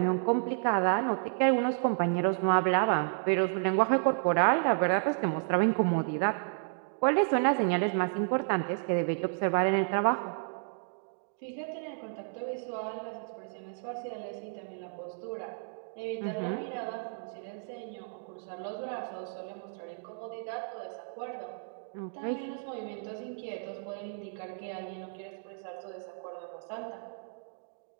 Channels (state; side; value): silent; left; digital silence